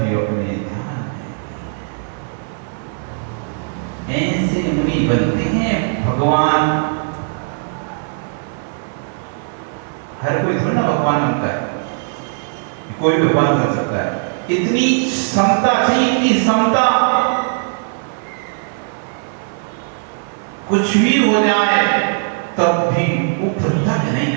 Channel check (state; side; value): silent; left; 57 dB below the other